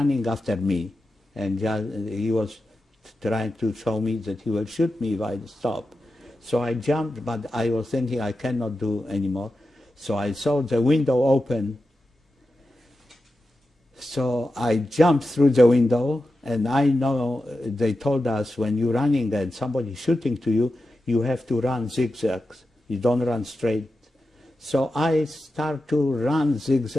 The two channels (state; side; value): normal; both; correlation 0.91